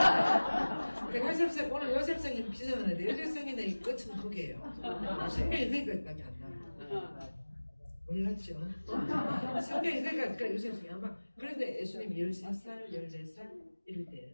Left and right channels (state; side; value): inverted; both; correlation -1.00